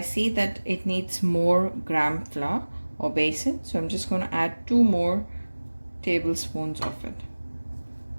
that it needs more gram flour or basin. So I'm just going to add 2 more tablespoons of it.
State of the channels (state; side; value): inverted; both; correlation -1.00